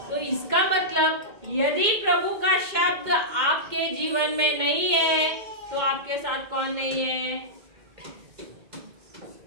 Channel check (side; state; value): left; late; 2.1 ms